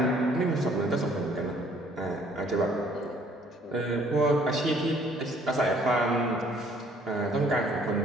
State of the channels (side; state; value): both; normal; correlation 0.60